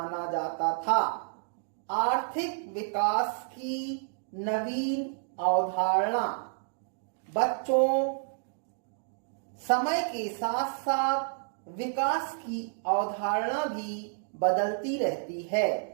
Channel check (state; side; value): silent; left; digital silence